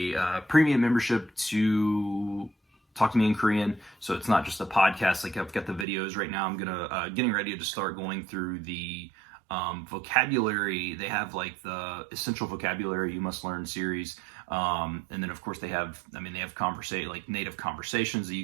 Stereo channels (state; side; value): drops out; left; at 5.9 s